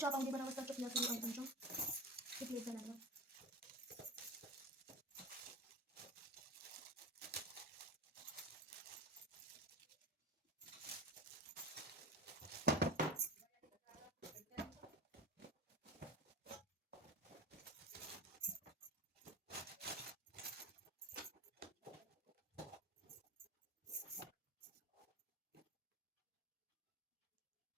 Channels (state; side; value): normal; both; correlation 0.27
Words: पावणे 12 वाजता चकल्या सुरू आहेत आमच्या किती लेट झाला